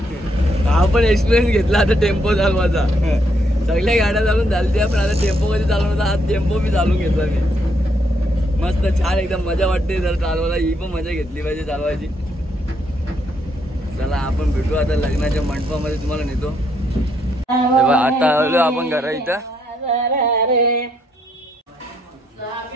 हा पण एक्सपिरियन्स घेतला आता टेम्पो चालवायचा. सगळ्या गाड्या चालून झाल्या पण आता टेम्पो कधी चालवणार आज टेम्पो मी चालवून घेतला मी. मस्त छान एकदम मजा वाटते जर चालवायला. ही पण मजा घेतली पाहिजे चालवायची. चला आपण भेटू आता लग्नाच्या मंडपामध्ये तुम्हाला नेतो. आता आलो आपण घरा इथं.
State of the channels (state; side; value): normal; both; correlation 0.74